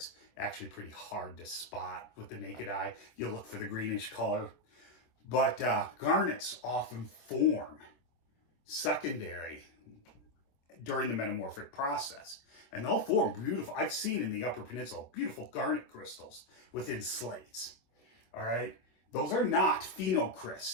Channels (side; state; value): right; late; 25 ms